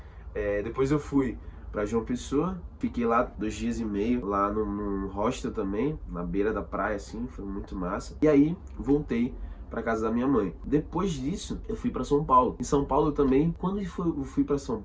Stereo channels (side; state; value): both; identical; correlation 1.00